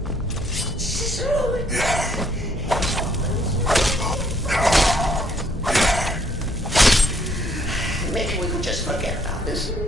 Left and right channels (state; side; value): normal; both; correlation 0.66